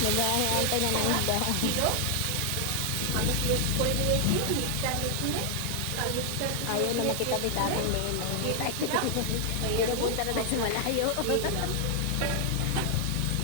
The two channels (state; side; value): different; both; correlation 0.00